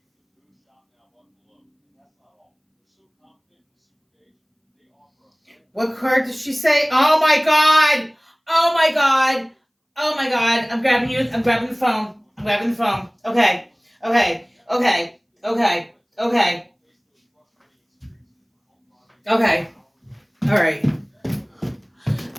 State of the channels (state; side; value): identical; both; correlation 1.00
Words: What card does she say? Oh my god! Oh my god! Oh my god! I'm grabbing you. I'm grabbing the phone. I'm grabbing the phone. Okay. Okay. Okay. Okay. Okay. Okay. All right.